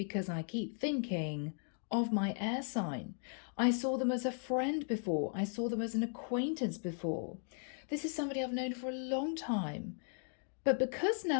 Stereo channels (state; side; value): silent; right; 53 dB below the other